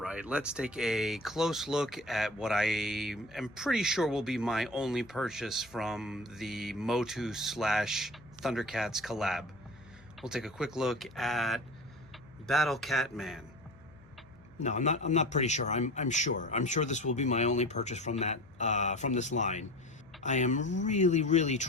right, let's take a close look at what I am pretty sure will be my only purchase from the MOTU / Thundercats collab. We'll take a quick look at Battle Cat Man. No, I'm not pretty sure. I'm sure this will be my only purchase from that from this line. I am really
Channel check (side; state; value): left; noise; hum, 26 dB below the sound